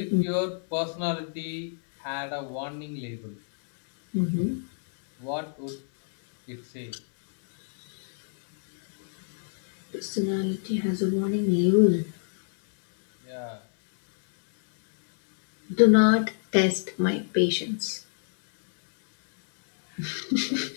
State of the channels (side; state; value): right; silent; digital silence